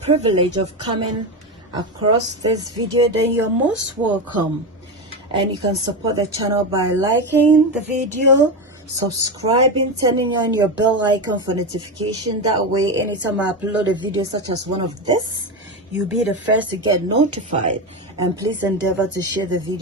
of coming across this video, then you're most welcome, and you can support the channel by liking the video, subscribing, turning on your bell icon for notification. That way anytime I upload a video such as one of this, you'll be the first to get notified. And please endeavor to share the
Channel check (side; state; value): both; normal; correlation 0.16